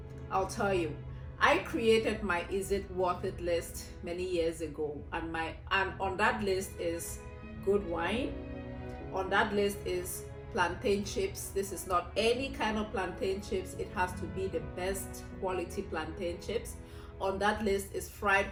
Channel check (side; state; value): both; identical; correlation 1.00